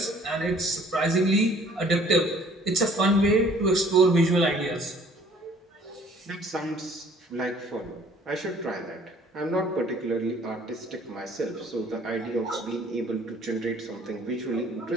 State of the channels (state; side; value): normal; both; correlation 0.55